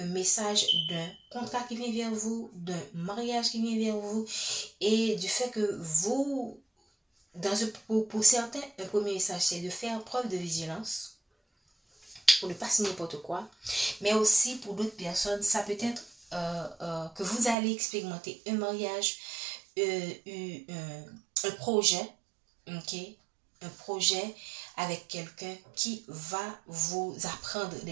message d'un contrat qui vient vers vous, d'un mariage qui vient vers vous, et du fait que vous, pour certains, un premier message, c'est de faire preuve de vigilance, pour ne pas signer n'importe quoi, mais aussi pour d'autres personnes, ça peut être que vous allez expérimenter un mariage, un projet, ok, un projet avec quelqu'un qui va vous apprendre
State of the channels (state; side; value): drops out; left; at 17.6 s